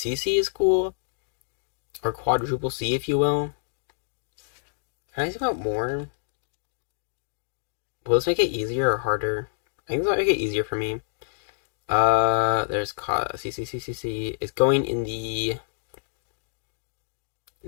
is cool. Or quadruple C, if you will. Can I think about more? Will this make it easier or harder? I think this might make it easier for me. There's CC. It's going in the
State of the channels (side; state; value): right; silent; digital silence